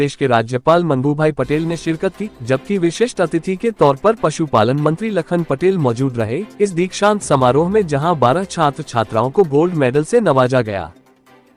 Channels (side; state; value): both; identical; correlation 1.00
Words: के राज्यपाल मंगूभाई पटेल ने शिरकत की, जबकि विशिष्ट अतिथि के तौर पर पशुपालन मंत्री लखन पटेल मौजूद रहे। इस दीक्षांत समारोह में जहां 12 छात्र छात्राओं को गोल्ड मेडल से नवाजा गया,